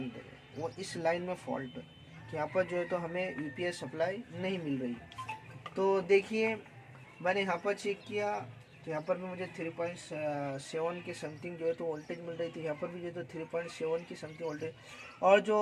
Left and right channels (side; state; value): both; identical; correlation 1.00